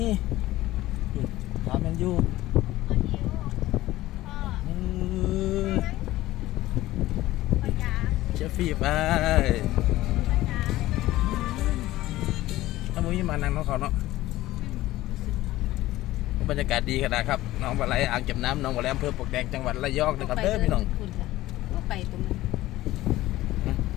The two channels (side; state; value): right; quieter; 16.4 dB